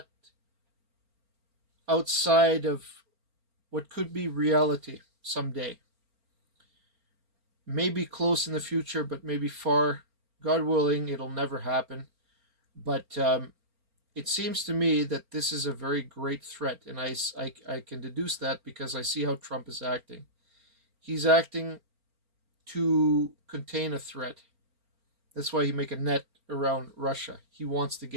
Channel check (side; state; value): left; late; 4.4 ms